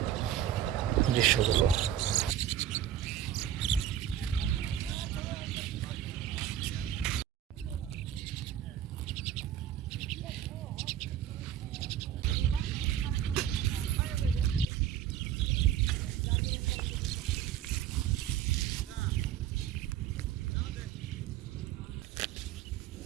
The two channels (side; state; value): left; quieter; 10.6 dB